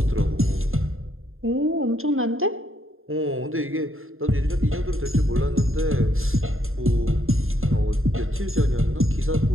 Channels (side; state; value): left; late; 0.61 ms